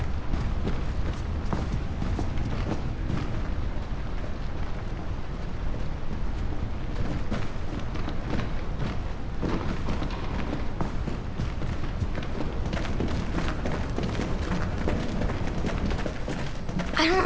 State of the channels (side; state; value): both; identical; correlation 1.00